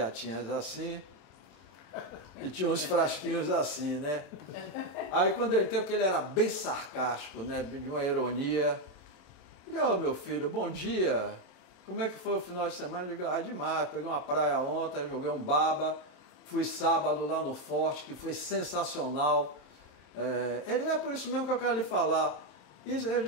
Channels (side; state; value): right; late; 27 ms